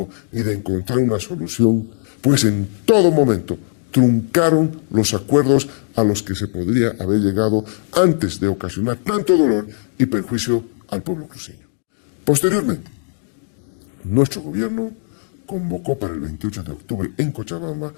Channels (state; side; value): silent; right; digital silence